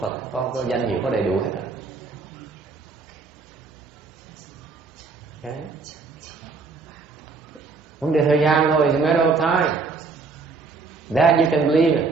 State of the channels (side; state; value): left; quieter; 4.4 dB